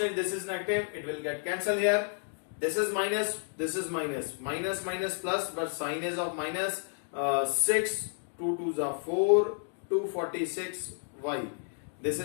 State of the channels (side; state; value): right; silent; 57 dB below the other